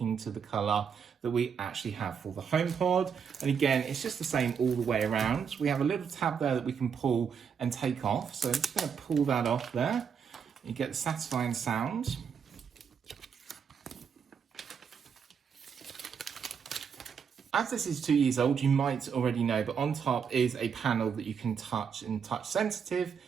to the colour that we actually have for the HomePod. And again, it's just the same all the way around. We have a little tab there that we can pull and take off. So I'm just going to pull that off there. You get the satisfying sound. As this is 2 years old, you might already know, but on top is a panel that you can touch and touch sensitive,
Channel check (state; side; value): quieter; left; 6.9 dB